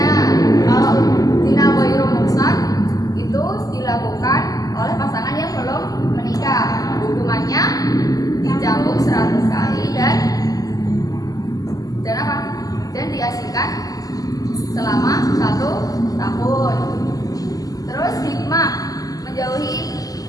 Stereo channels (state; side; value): late; right; 0.17 ms